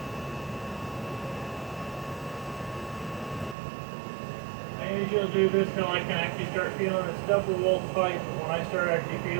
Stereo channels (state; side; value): drops out; left; at 3.6 s